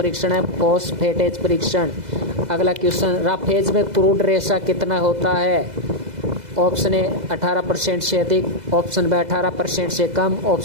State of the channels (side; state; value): left; late; 2.0 ms